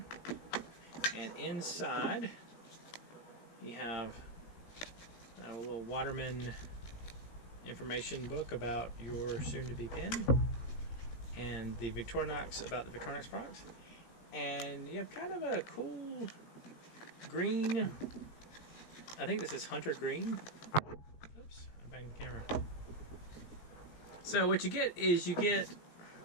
And inside you have a little Waterman information book about your soon-to-be pen, and the Victorinox, about the Victorinox products. And you have kind of a cool green, I think this is hunter green. Oops, I banged the camera. So what you get is you get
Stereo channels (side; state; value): right; late; 17 ms